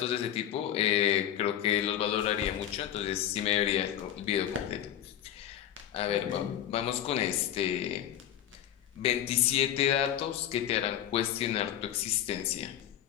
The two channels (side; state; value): right; quieter; 10.9 dB